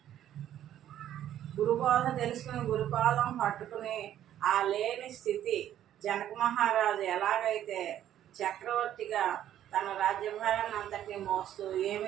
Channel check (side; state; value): left; quieter; 11.4 dB